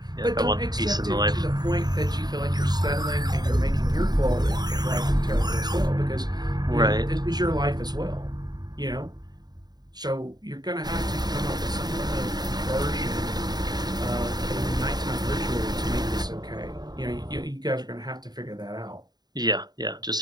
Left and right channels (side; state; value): left; late; 0.20 ms